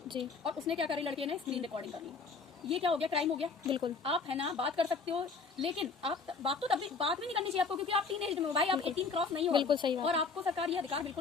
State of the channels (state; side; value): quieter; right; 4.6 dB